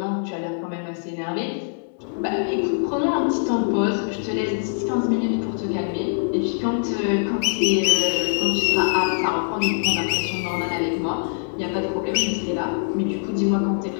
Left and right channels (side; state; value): right; silent; digital silence